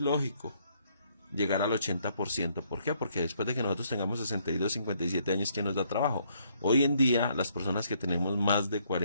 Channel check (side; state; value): both; inverted; correlation -0.69